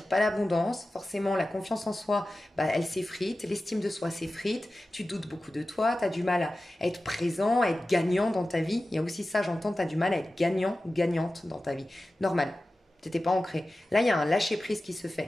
pas l'abondance, forcément la confiance en soi, bah, elle s'effrite, l'estime de soi s'effrite, tu doutes beaucoup de toi, tu as du mal à être présent, à être gagnant dans ta vie. Il y a aussi ça, j'entends, tu as du mal à être gagnant, gagnante dans ta vie. Normal, t'étais pas ancré. Là, il y a un lâcher-prise qui se fait.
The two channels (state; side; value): normal; both; correlation 0.95